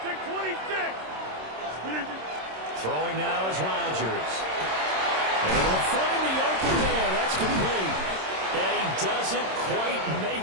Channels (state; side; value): late; left; 26 ms